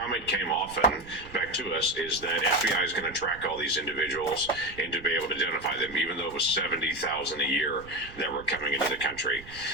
came often back to us is that FBI is going to track all these individuals and to be able to identify them, even though it was 70,000 a year that were coming into the country.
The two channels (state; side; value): noise; right; rumble, 18 dB below the sound